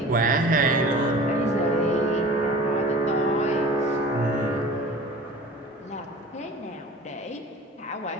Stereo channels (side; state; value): both; normal; correlation 0.41